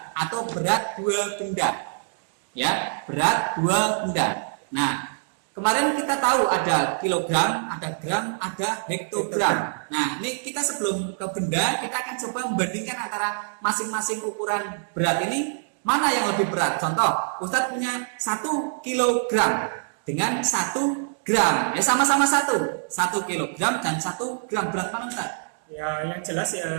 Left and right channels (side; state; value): left; silent; digital silence